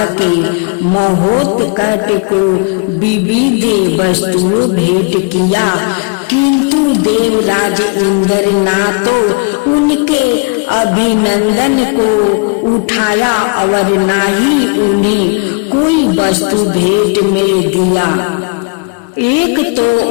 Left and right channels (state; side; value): quieter; right; 32.7 dB